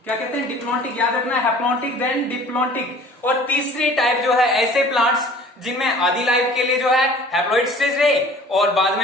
क्या कहते हैं? डिप्लॉन्टिक। याद रखना, हैप्लॉन्टिक देन डिप्लॉन्टिक। और तीसरी टाइप जो है ऐसे प्लांट्स जिनमें आधी लाइफ के लिए जो है हैप्लॉइड स्टेज रहे और बाद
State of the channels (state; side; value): normal; both; correlation 0.48